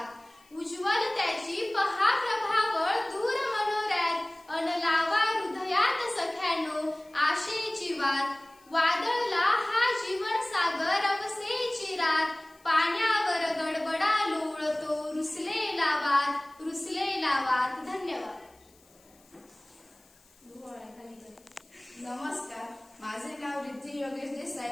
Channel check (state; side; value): noise; left; hiss, 30 dB below the sound